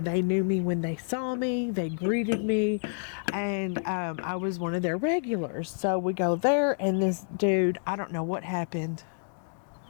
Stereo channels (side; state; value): right; silent; digital silence